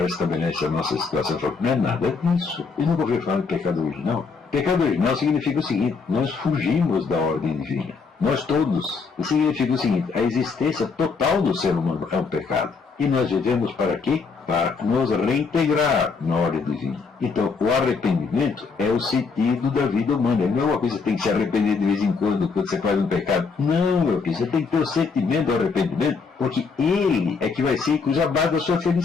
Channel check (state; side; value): quieter; right; 4.9 dB